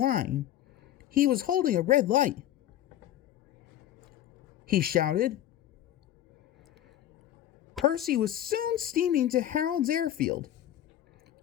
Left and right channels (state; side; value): quieter; right; 12.2 dB